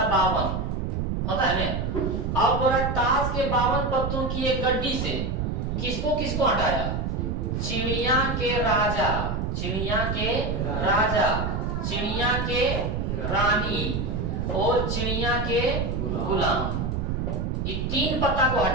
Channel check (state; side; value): noise; right; rumble, 1 dB below the sound